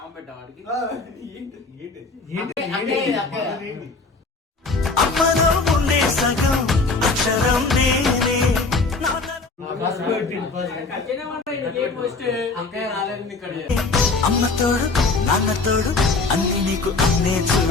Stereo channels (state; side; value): quieter; right; 3.8 dB